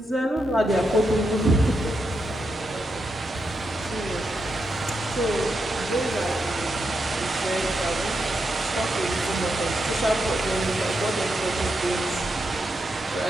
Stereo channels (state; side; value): normal; both; correlation 0.84